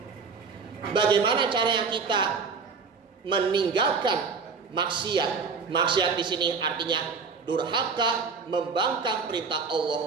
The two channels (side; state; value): left; quieter; 5.2 dB